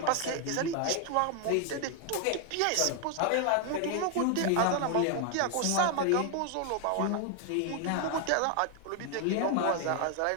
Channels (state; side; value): different; both; correlation 0.00